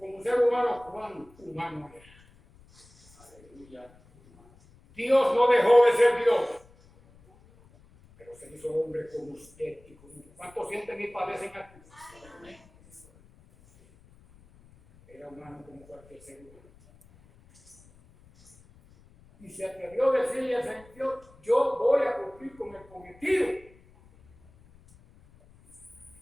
¿cuán humano era? Aleluya. Dios no dejó de ser Dios, pero se hizo hombre como usted y como yo. ¿Cuántos sienten y padecen aquí? Era humano como cualquier ser humano. Y se atrevió a decirle al Señor, yo voy a cumplir con el cometido.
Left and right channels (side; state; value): left; noise; rumble, 26 dB below the sound